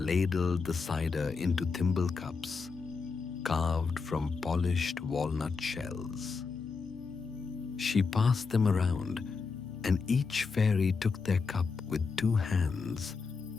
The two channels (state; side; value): quieter; right; 4.8 dB